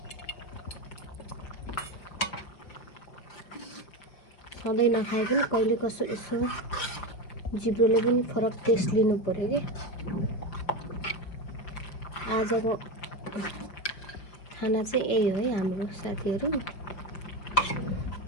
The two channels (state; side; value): late; right; 6.1 ms